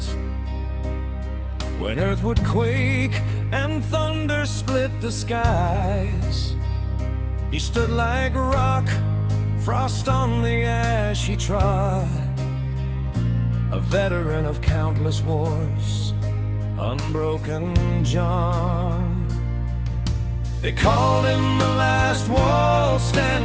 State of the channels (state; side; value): identical; both; correlation 1.00